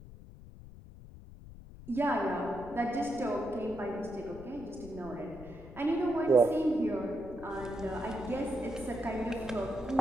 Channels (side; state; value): left; noise; rumble, 16 dB below the sound